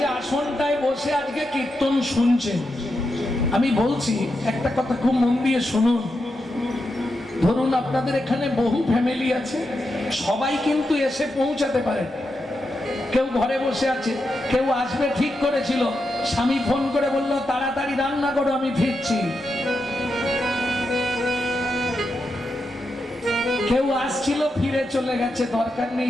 আসনটায় বসে আজকে কীর্তন শুনছেন, আমি বলছি একটা কথা খুব মন দিয়ে শুনুন। ধরুন আপনাদের এখানে বহু ফ্যামিলি আছে, সবাই কিন্তু এসে পৌঁছাতে পারে। কেউ ঘরে বসে আছে, কেউ আসবে ঠিক করেছিল, স্বামী ফোন করে বলল তাড়াতাড়ি রান্না করো আমি ফিরছি। কেউ আসছিল ফিরে চলে গেছে, দরকার নেই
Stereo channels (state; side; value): normal; both; correlation 0.86